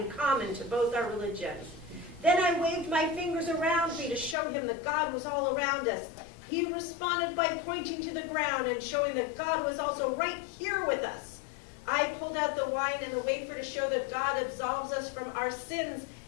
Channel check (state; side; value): drops out; right; at 4.4 s